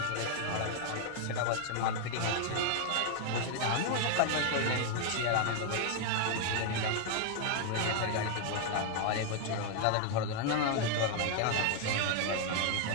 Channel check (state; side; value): different; both; correlation 0.00